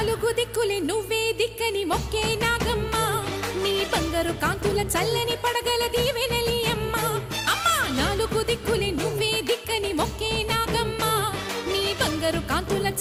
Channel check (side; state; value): both; identical; correlation 1.00